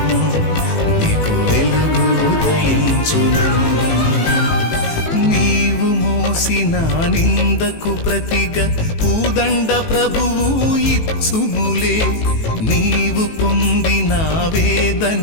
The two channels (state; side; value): late; right; 18 ms